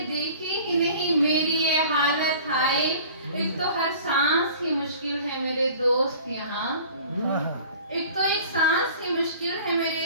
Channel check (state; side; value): inverted; both; correlation -0.46